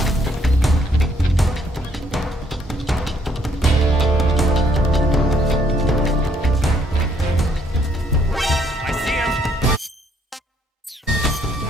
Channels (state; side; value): normal; both; correlation 0.68